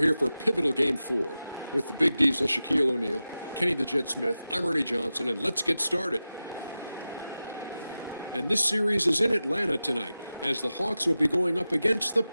here for pivotal Game 4 with the Big Diesel, Shaquille O'Neal, Kenny the Jet Smith, I'm Ernie Johnson, and let's get started. And this series is in Atlanta tonight, as the Hawks will be going up against the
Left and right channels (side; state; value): both; inverted; correlation -0.94